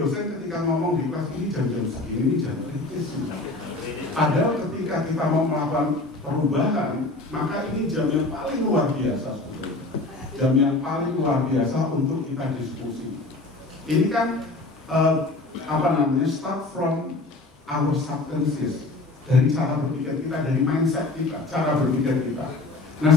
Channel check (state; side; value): quieter; right; 3.1 dB